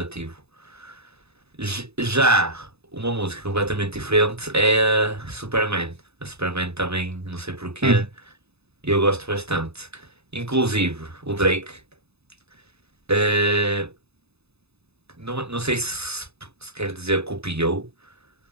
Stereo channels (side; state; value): left; late; 0.79 ms